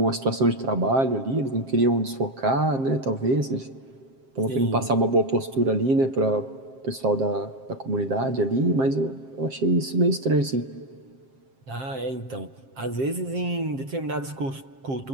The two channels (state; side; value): late; left; 7.5 ms